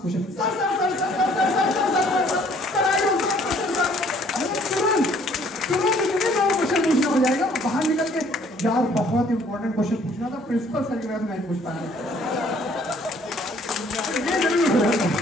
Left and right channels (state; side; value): normal; both; correlation 0.60